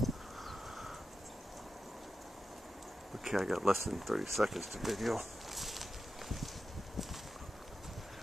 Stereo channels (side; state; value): both; normal; correlation 0.91